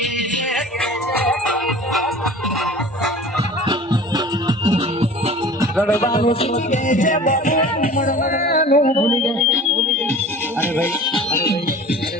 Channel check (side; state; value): both; normal; correlation 0.42